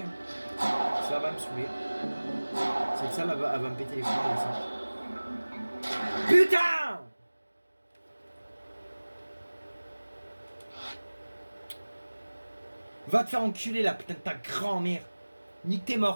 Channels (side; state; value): both; inverted; correlation -1.00